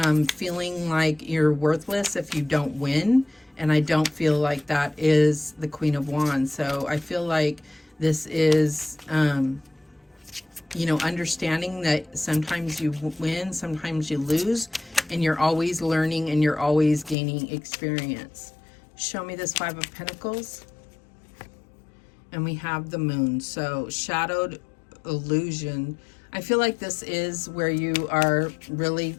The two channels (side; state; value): right; drops out; at 17.2 s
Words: feeling like you're worthless if you don't win. And I don't feel like that is the Queen of Wands. So I feel like this is, you know, understanding that sometimes you win, sometimes you lose, and you're always learning and you're always gaining experience. Show me this Five of Pentacles. And we have the Moon. So shadowed illusion. I feel like this is where you are really